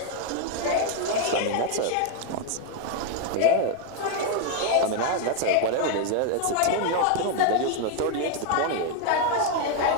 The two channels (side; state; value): both; different; correlation 0.01